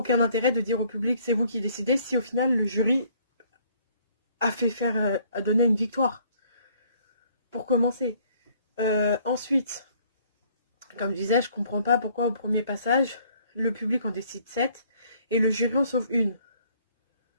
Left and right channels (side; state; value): both; inverted; correlation -0.62